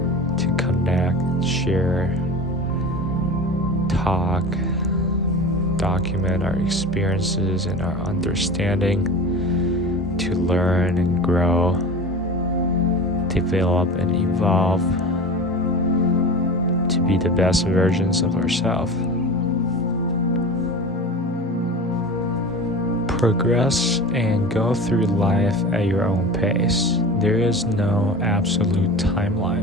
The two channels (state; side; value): normal; both; correlation 0.33